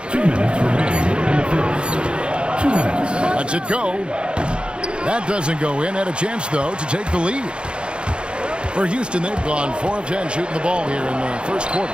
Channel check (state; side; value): late; left; 0.055 ms